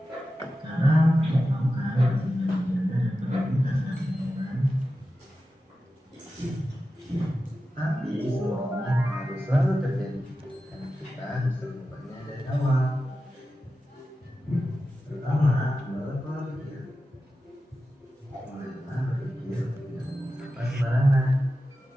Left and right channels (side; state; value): both; normal; correlation 0.93